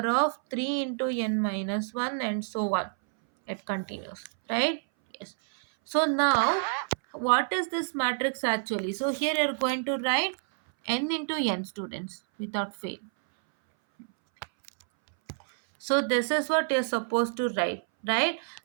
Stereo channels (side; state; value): left; silent; 59 dB below the other